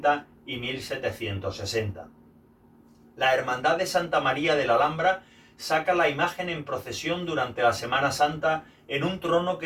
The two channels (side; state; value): both; identical; correlation 1.00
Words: y 1760. La Hermandad de Santa María de la Alhambra saca la imagen en procesión durante la Semana Santa en un trono